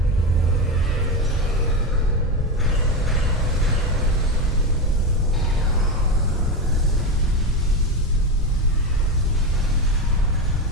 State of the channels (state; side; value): normal; both; correlation 0.15